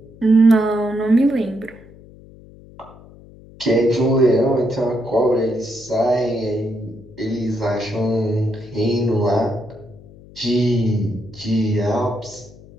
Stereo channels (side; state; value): left; noise; hum, 22 dB below the sound